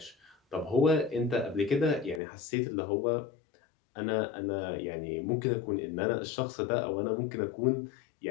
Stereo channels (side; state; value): right; drops out; at 2.2 s